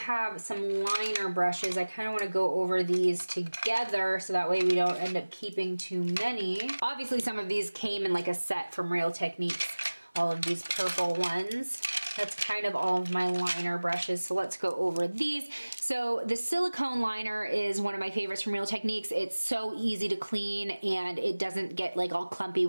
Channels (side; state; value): both; inverted; correlation -1.00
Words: some liner brushes. I kind of want to go over these together so that way we don't end up keeping too many. Obviously some of these came in like a set from Real Techniques, all of these purple ones. That's kind of all of my liner brushes, so let's go over these. So the Silicone Liner is one of my favorites from Real Techniques. It's so easy to clean and it doesn't get like all clumpy